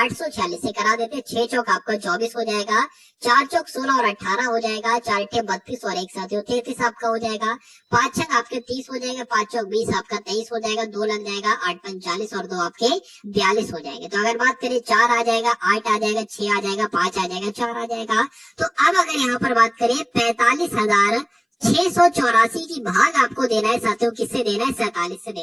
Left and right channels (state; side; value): identical; both; correlation 1.00